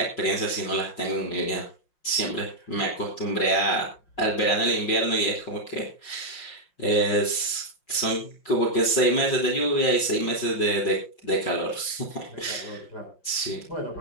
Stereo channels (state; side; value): late; right; 5.6 ms